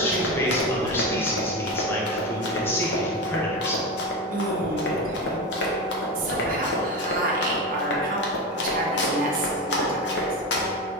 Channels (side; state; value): both; normal; correlation 0.20